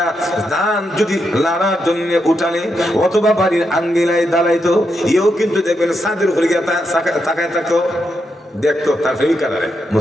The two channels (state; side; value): normal; both; correlation 0.83